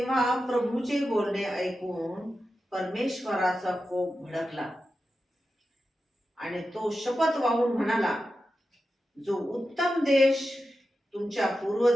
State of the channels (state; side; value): normal; both; correlation 0.91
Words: प्रभूचे बोलणे ऐकून परमेश्वराचा कोप भडकला आणि तो शपथ वाहून म्हणाला, जो उत्तम देश तुमच्या